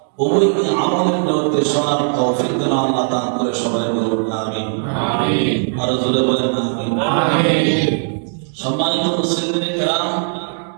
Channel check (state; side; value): silent; left; 67 dB below the other